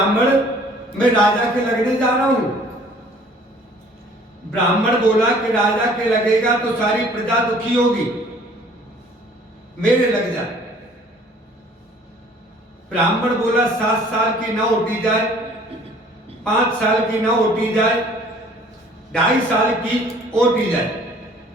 मैं राजा के लगने जा रहा हूं। ब्राह्मण बोला कि राजा के लगेगा तो सारी प्रजा दुखी होगी, मेरे लग जाए। ब्राह्मण बोला 7 साल की ना ओटी जाए, 5 साल की ना ओटी जाए, 2.5 साल की ओटी जाए,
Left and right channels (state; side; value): normal; both; correlation 0.54